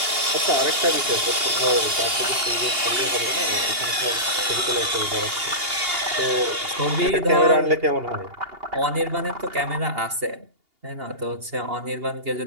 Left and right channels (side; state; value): left; late; 2.8 ms